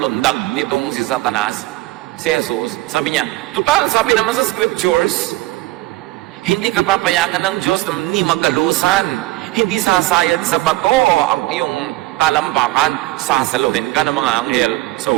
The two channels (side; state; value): left; quieter; 18.6 dB